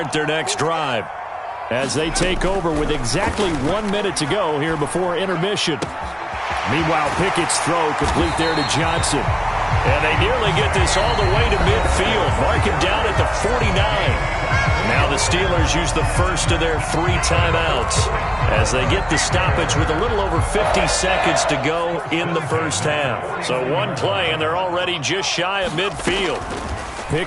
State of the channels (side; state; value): both; identical; correlation 1.00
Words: their next drive, as they take over with exactly 1 minute to go here before intermission. Meanwhile, Pickett's throw complete there to Johnson. And they nearly get this all the way to midfield. Mark him down at the 49. Now the Steelers use the first of their 3 timeouts as they get the stoppage with a little over 50 seconds to go in the first half. So one play, and they're already just shy of midfield.